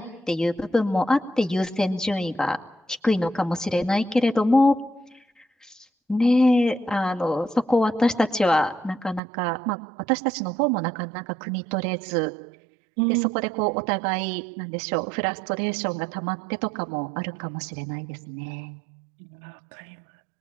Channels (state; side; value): drops out; left; at 9.2 s